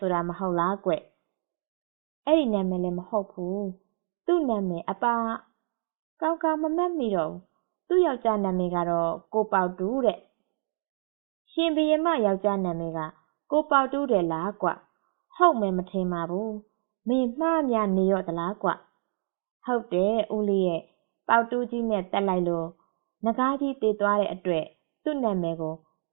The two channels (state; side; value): silent; left; 60 dB below the other